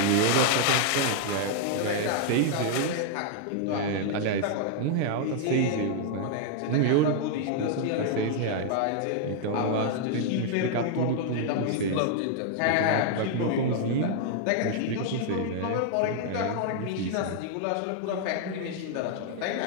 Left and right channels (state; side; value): different; both; correlation -0.01